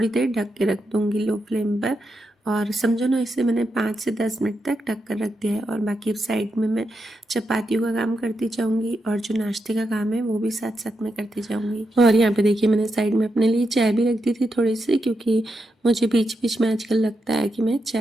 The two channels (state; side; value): normal; both; correlation 0.85